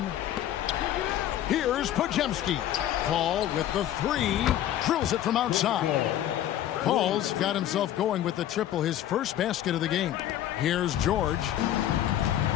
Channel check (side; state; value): right; quieter; 12.0 dB